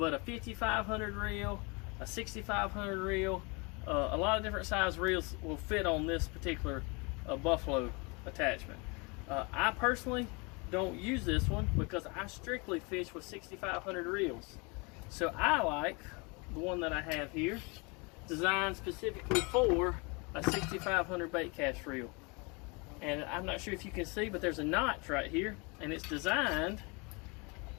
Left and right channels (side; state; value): right; quieter; 29.9 dB